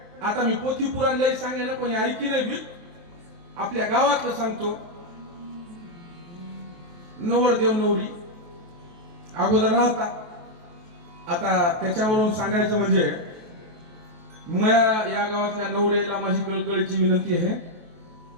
आता मी पोथी पुराण लय सांगेन कोणी ऐकी नाही बी. आपल्या गावातलं सांगतो. नवरदेव नवरी अगोदर राहता. आता त्याच्यावरून सांगायचं म्हणजे या गावातल्या नवऱ्याला माझी कळकळीची विनंती आहे.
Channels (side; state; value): left; late; 23 ms